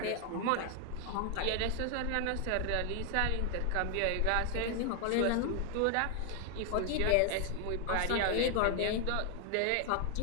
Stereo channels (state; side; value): different; both; correlation 0.00